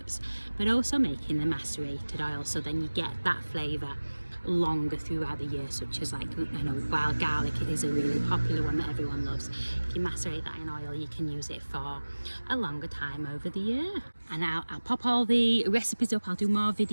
but also making the macerated oil, so then you get that flavour longer throughout the year, such as, like, I know wild garlic is a really popular one that everyone loves. If you macerate that in oil, you can use it for a longer time over the year. And I'll pop all the recipes up, I'll do more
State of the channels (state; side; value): inverted; both; correlation -1.00